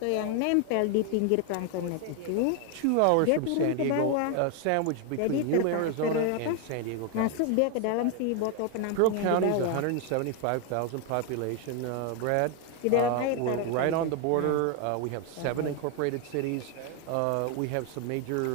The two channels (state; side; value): different; both; correlation 0.01